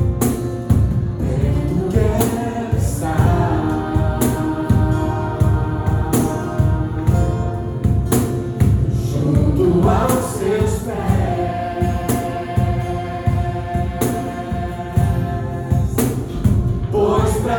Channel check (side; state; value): both; identical; correlation 1.00